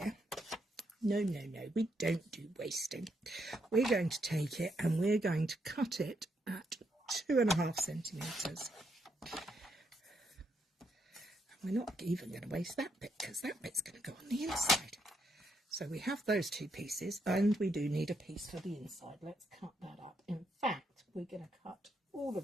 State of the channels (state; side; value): normal; both; correlation 0.78